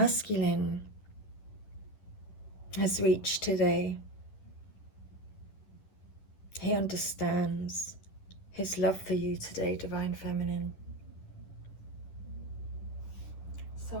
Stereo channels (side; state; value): right; late; 10 ms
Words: has reached today. He understands his love for you today, Divine Feminine.